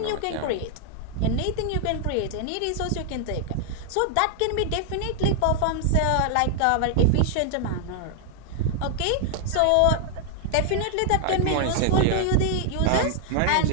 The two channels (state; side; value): different; both; correlation 0.00